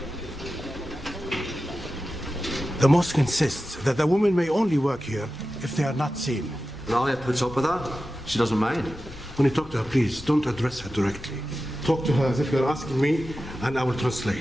The mosque insists that the women may only work here if they are not seen. Alia puts up with that. She doesn't mind. When you talk to her, please, don't address her directly. Talk to her as if you're asking me, and I will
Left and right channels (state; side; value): normal; both; correlation 0.93